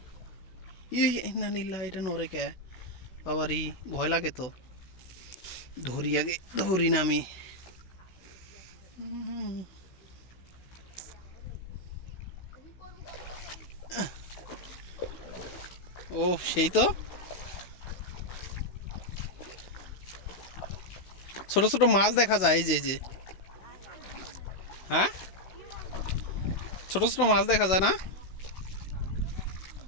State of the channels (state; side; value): late; right; 16 ms